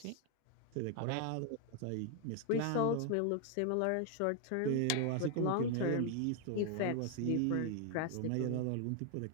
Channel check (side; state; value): both; different; correlation 0.00